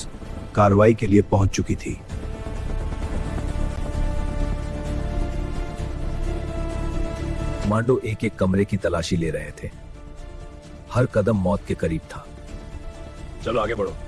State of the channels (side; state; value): both; identical; correlation 1.00